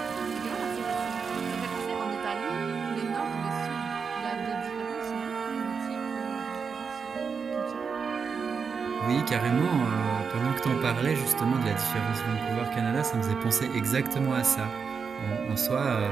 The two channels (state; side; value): quieter; left; 5.8 dB